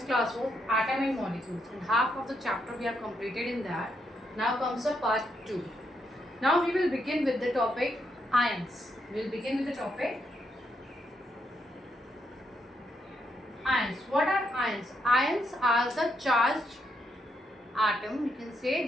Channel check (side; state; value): both; normal; correlation 0.78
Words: class was atom and molecules, and half of the chapter we have completed in that. Now comes the part 2. Now we will begin with the topic ions. We will begin with the topic ions. What are ions? Ions are the charged atom. You can say